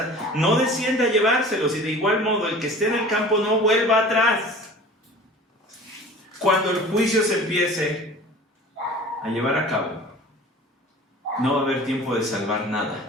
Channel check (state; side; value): normal; both; correlation 0.42